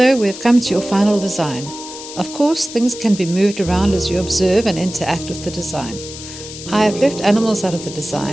we've come to your final design. Of course, things can be moved around as you observe and interact with the design. I have left animals out of the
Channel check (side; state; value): left; noise; hiss, 12 dB below the sound